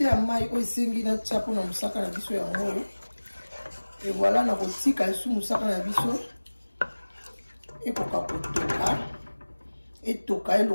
ya mai oyo esengi na tia mpona mosaka na biso yango. Et voilà, na kotika sous mosaka na biso ekoka kotoka etoka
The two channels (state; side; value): inverted; both; correlation -1.00